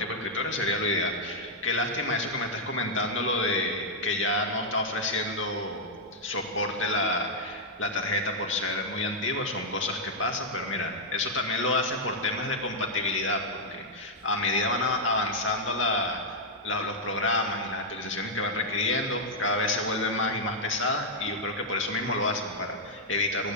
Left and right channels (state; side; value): normal; both; correlation -0.05